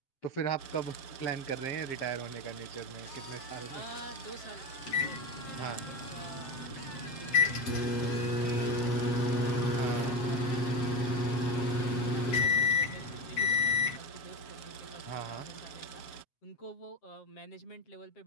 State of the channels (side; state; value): right; late; 7.5 ms